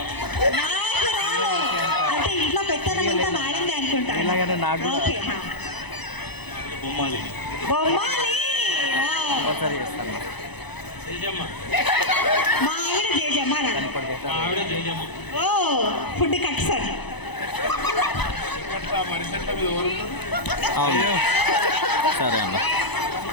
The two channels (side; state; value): right; late; 0.99 ms